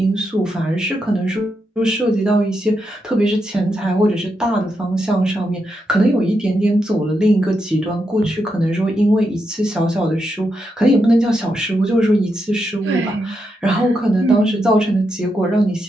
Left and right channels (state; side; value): normal; both; correlation 0.84